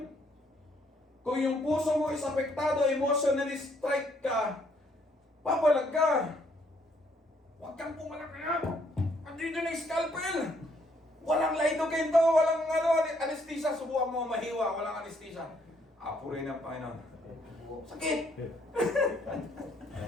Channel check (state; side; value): normal; both; correlation 0.69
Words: Kung yung puso mo is apektado, emotionally strike ka, papalag ka. Huwag kang pumalakaya. Andito na yung scalpel. Walang lidocaine to, walang anesthesia. Subukan mo mahiwa, walang anesthesia. Apurin ng Panginoon. Sakit!